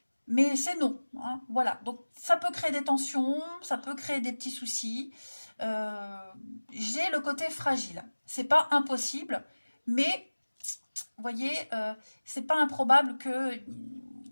Mais c'est non. Hein, voilà. Donc ça peut créer des tensions, ça peut créer des petits soucis. J'ai le côté fragile. C'est pas impossible, mais vous voyez, c'est pas improbable que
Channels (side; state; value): both; inverted; correlation -1.00